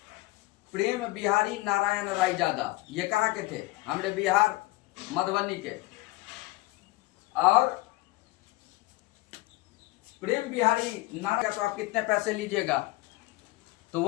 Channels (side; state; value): right; quieter; 20.2 dB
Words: प्रेम बिहारी नारायण रायजादा। ये कहाँ के थे? हमारे बिहार मधुबनी के। और प्रेम बिहारी नारायण, तो आप कितने पैसे लीजिएगा? तो